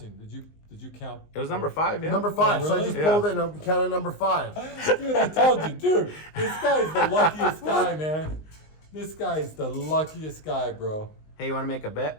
Did you count? It was number 5, yeah? Number 5. Oh, So I really? just Yeah. pulled it and counted number 5. Dude, I told you, dude. This guy's the luckiest guy, man. This guy is the luckiest guy, bro. Hey, you want to make a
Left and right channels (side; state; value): right; late; 19 ms